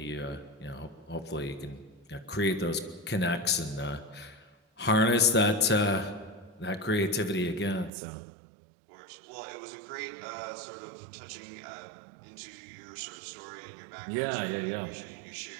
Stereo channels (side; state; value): left; drops out; at 7.9 s